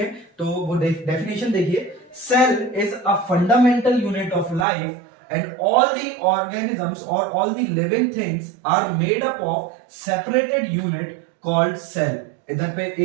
तो वो डेफिनेशन देखिए, cell is a fundamental unit of life and all the organisms or all the living things are made up of separated unit called cell। इधर पे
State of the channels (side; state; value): left; drops out; at 4.7 s